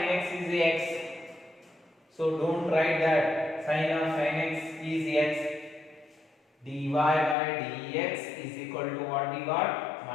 x is x. So don't write that sin of sin x is x. dy by dx is equal to what we got?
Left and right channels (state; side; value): drops out; right; at 7.4 s